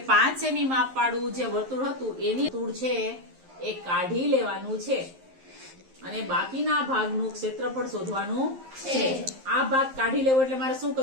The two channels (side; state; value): left; late; 11 ms